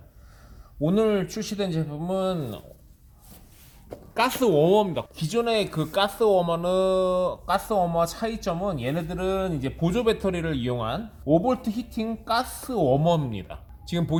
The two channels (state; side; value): identical; both; correlation 1.00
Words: 오늘 출시된 제품은 가스 워머입니다. 기존의 그 가스 워머 차이점은 얘네들은 이제 보조 배터리를 이용한 5V 히팅 가스 워머입니다. 지금